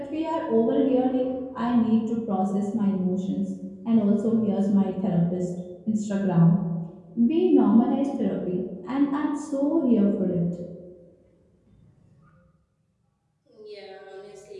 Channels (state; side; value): identical; both; correlation 1.00